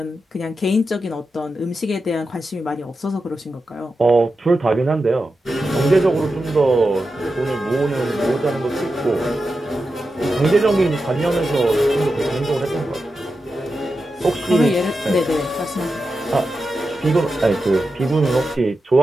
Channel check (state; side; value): normal; both; correlation 0.90